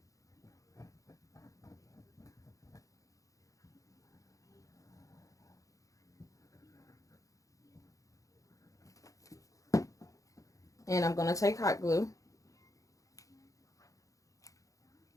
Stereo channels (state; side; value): late; right; 0.16 ms